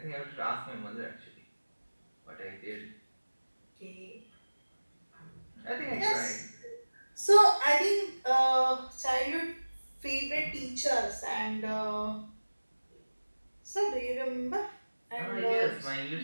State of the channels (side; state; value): both; inverted; correlation -1.00